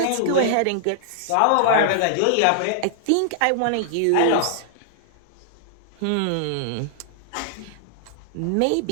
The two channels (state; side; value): different; both; correlation -0.01